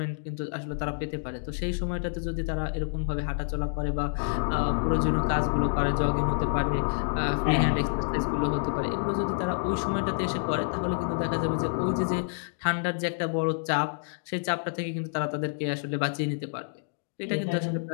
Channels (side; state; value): right; silent; digital silence